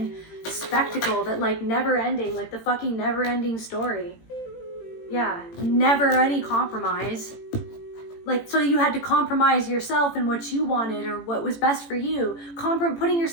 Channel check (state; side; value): late; right; 18 ms